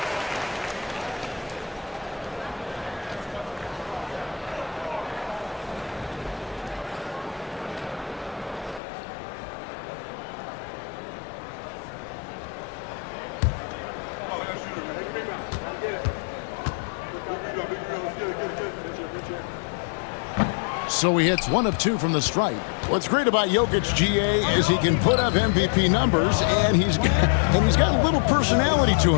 So he hits 1 of 2 from the stripe. What's great about Jokic, GA, is he can put up MVP numbers, and he's got a little personality to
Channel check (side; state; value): right; drops out; at 8.8 s